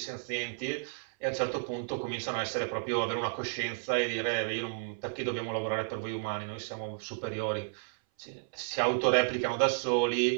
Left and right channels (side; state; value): left; silent; 56 dB below the other